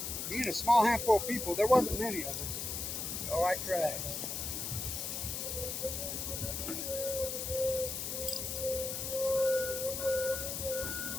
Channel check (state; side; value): noise; left; hiss, 3 dB below the sound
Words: Being a small handful of people, there wasn't many of us. So I tried.